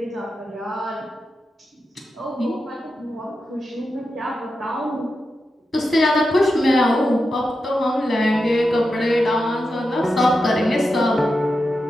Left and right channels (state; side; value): normal; both; correlation 0.89